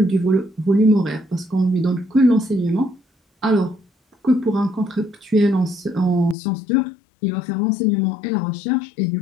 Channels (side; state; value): right; drops out; at 6.4 s